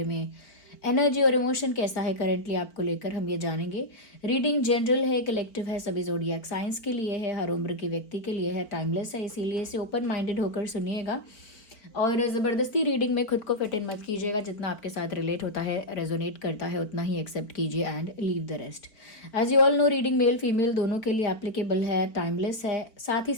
में, एनर्जी और इमोशन कैसा है करेंटली आपको लेकर हम ये जानेंगे। रीडिंग जनरल है, कलेक्टिव है, सभी ज़ोडिएक साइंस के लिए है, हर उम्र के व्यक्ति के लिए है, टाइमलेस है, इसीलिए इसे ओपन माइंडेड होकर सुनिएगा और ज़बरदस्ती रीडिंग में खुद को फिट इन मत कीजिएगा। जितना आपके साथ रिलेट होता है, रेजोनेट करता है, उतना ही एक्सेप्ट कीजिए and leave the rest. As you all know, reading male female दोनों के लिए एप्लीकेबल है, टाइमलेस है। साथ ही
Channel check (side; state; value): right; late; 4.5 ms